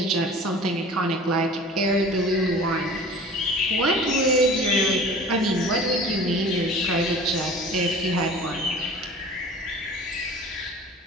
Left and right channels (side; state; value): both; normal; correlation 0.42